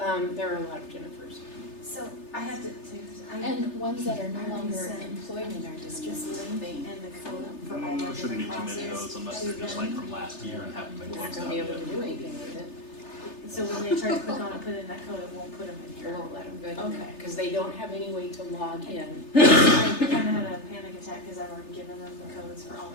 there are a lot of Jennifers. So I have to, And ones that are no I longer sent employed in our just district. link and the code for all my There shouldn't be different too many of classes. those unless they're just like from last year and haven't been You're not closed gonna out be able yet. to do anything with it. So when they try to click on and put in that code, it won't put them in You here. won't let them go in there Okay. because they don't have any way to log in. I kinda had a panic attack because I've already given them the codes for all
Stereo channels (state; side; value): late; right; 3.3 ms